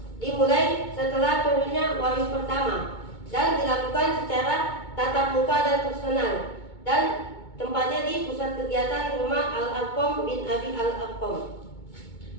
Dimulai setelah turunnya wahyu pertama dan dilakukan secara tatap muka dan personal, dan tempatnya di pusat kegiatan rumah Al-Arqam bin Abi Al-Arqam.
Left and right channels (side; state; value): right; late; 2.2 ms